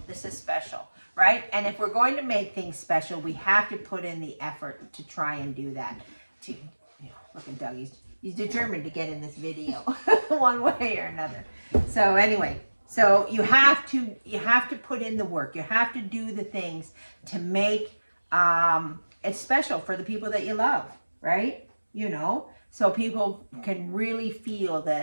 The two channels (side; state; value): both; inverted; correlation -1.00